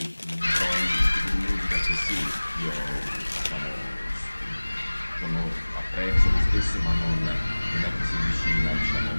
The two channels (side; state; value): both; inverted; correlation -1.00